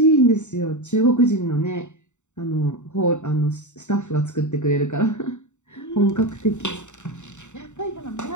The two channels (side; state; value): right; late; 0.84 ms